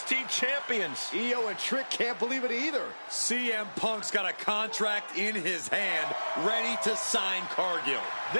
champions. Io and Trick can't believe it either. CM Punk's got a contract in his hand, ready to sign Cargill.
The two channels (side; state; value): both; inverted; correlation -1.00